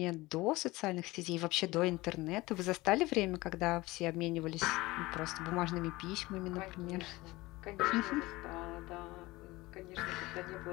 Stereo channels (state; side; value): quieter; right; 20.4 dB